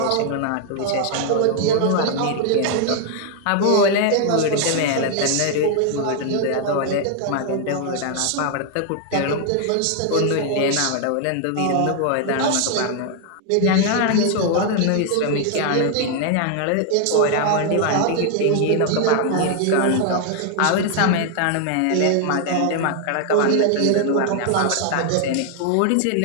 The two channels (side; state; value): both; different; correlation 0.00